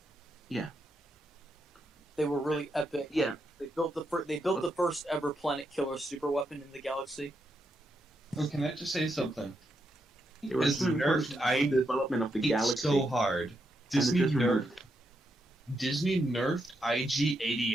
Yeah. They were really epic. Yeah. They built the first ever planet killer super weapon in the galaxy. Oh, can I just say something? They were As extremely nerfed, important to the development of the It's galaxy. so hard. and Disney it just removed. nerfed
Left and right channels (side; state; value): both; normal; correlation 0.82